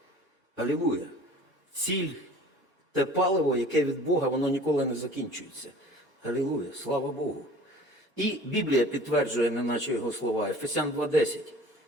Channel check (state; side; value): normal; both; correlation 0.45